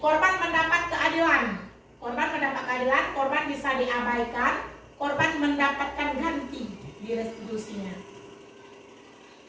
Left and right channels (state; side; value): identical; both; correlation 1.00